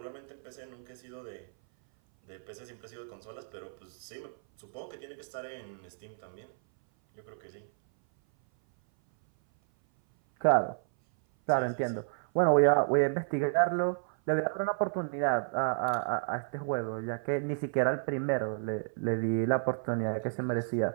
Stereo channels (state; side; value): silent; left; 57 dB below the other